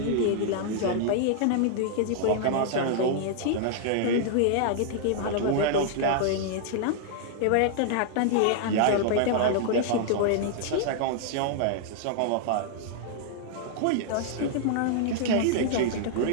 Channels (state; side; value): different; both; correlation -0.01